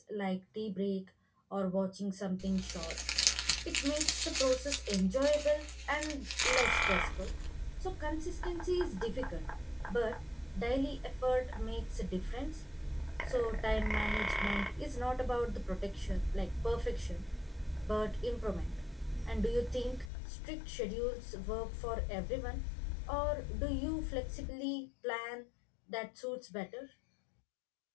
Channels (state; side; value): drops out; right; at 20.1 s